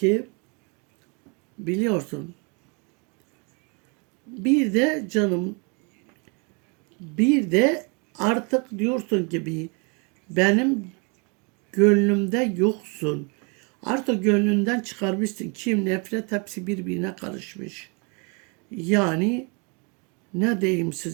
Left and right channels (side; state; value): left; quieter; 33.6 dB